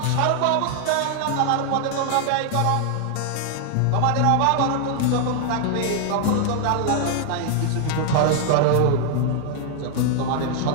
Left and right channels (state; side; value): different; both; correlation 0.00